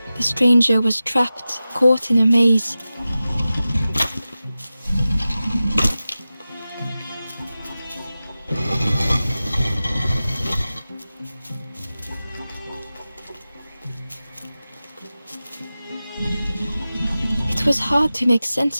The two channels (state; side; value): inverted; both; correlation -0.95